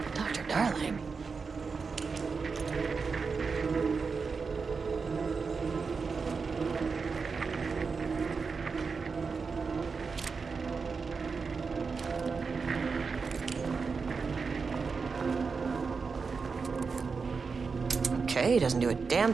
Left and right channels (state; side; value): quieter; left; 5.0 dB